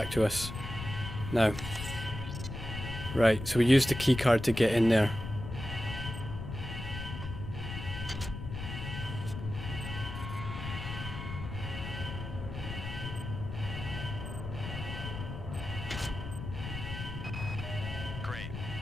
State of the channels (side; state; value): left; noise; rumble, 7 dB below the sound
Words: to us now. Right, so we used the key card to get in there. Great.